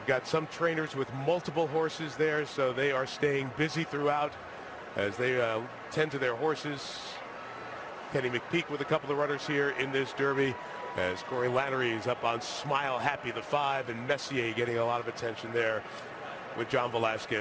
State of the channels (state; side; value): identical; both; correlation 1.00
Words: got some trainers with multiple horses there, so they are staying busy throughout as they tend to their horses. Kenny McPeak with a couple of runners here in this Derby, as Corey Lannery is up on Smile Happy the 5, and Messier getting a lot of attention there with John